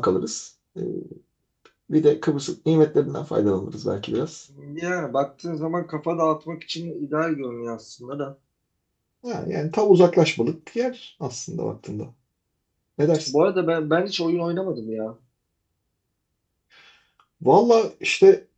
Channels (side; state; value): both; identical; correlation 1.00